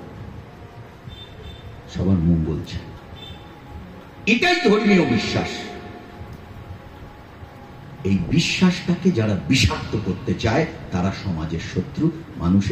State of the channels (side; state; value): both; identical; correlation 1.00